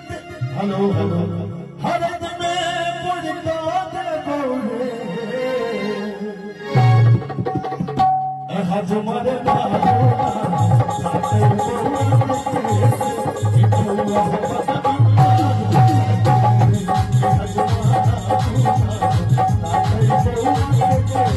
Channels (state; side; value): identical; both; correlation 1.00